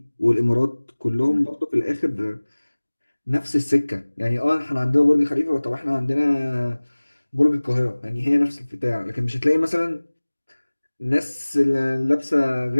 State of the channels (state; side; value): inverted; both; correlation -1.00